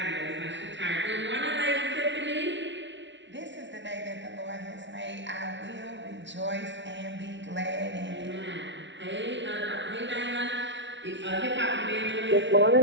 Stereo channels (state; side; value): late; left; 0.53 ms